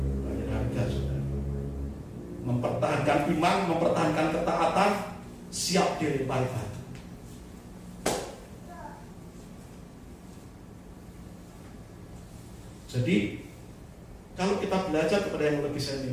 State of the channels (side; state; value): both; identical; correlation 1.00